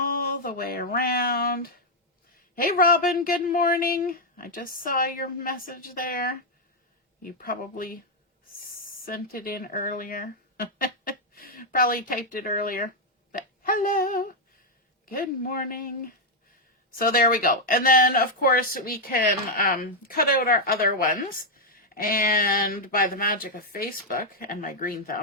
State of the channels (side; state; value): both; normal; correlation -0.01